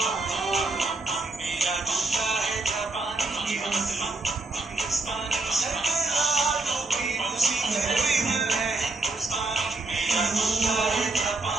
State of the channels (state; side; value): quieter; left; 3.2 dB